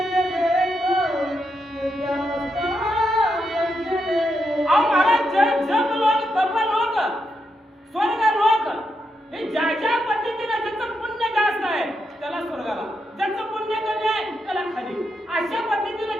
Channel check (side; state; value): both; normal; correlation 0.83